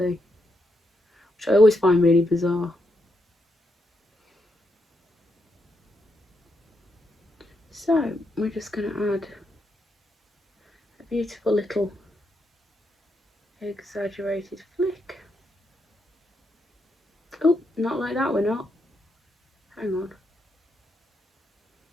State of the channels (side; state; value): both; normal; correlation 0.81